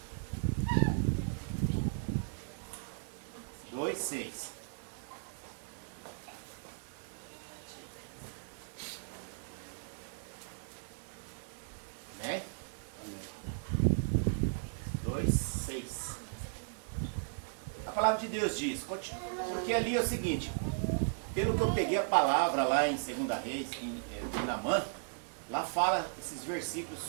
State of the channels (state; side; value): silent; left; digital silence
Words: Seis. Né? 2:6. A palavra de Deus diz, porque ali é o seguinte, pelo que eu peguei a palavra lá em 2 Reis, de Naamã, lá fala esses versículos